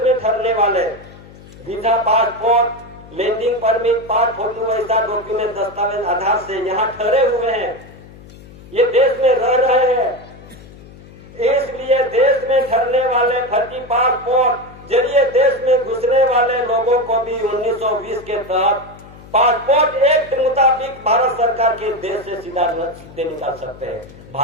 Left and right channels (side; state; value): left; noise; hum, 20 dB below the sound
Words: में ठहरने वाले वीजा, पासपोर्ट, लैंडिंग परमिट, पास फोटो, ऐसा डॉक्यूमेंट, दस्तावेज आधार से यहाँ ठहरे हुए हैं, ये देश में रह रहे हैं। इसलिए देश में ठहरने वाले फर्जी पासपोर्ट जरिए देश में घुसने वाले लोगों को भी 1920 के तहत पासपोर्ट एक्ट मुताबिक भारत सरकार के देश से सीधे निकाल सकते हैं।